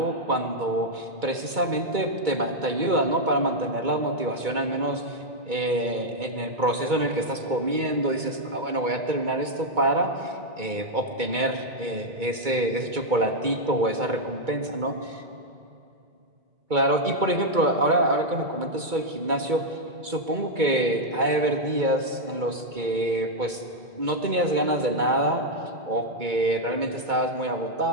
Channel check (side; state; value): left; late; 2.2 ms